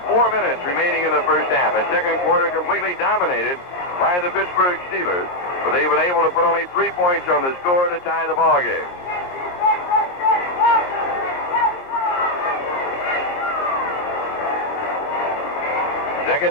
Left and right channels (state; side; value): late; right; 22 ms